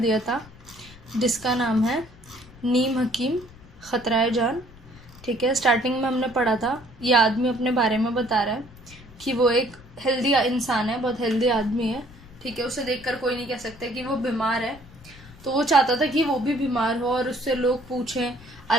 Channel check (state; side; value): noise; left; rumble, 21 dB below the sound